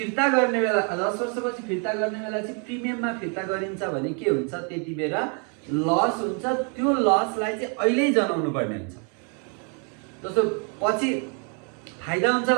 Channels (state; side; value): quieter; left; 38.4 dB